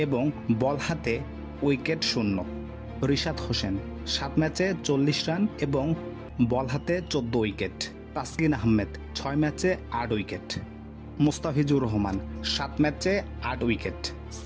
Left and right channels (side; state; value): both; identical; correlation 1.00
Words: এবং বল হাতে উইকেট শূন্য, রিশাদ হোসেন 7 ম্যাচে 40 রান এবং বল হাতে 14 উইকেট, তাসকিন আহমেদ 6 ম্যাচে 8 উইকেট, মুস্তাফিজুর রহমান 7 ম্যাচে 8 উইকেট,